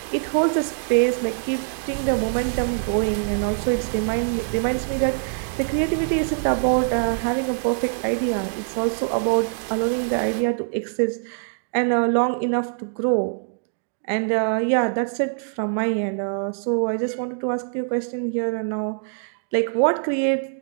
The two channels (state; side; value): silent; left; digital silence